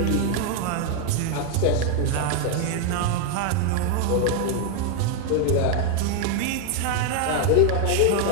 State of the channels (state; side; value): different; both; correlation 0.01